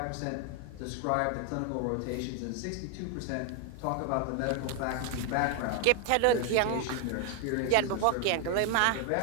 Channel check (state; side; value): different; both; correlation 0.01